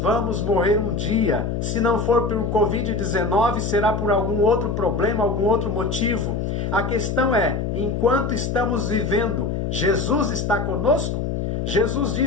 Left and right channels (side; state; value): left; noise; hum, 2 dB below the sound